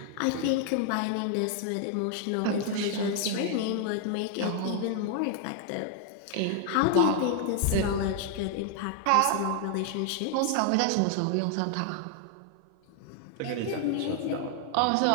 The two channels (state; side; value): different; both; correlation 0.00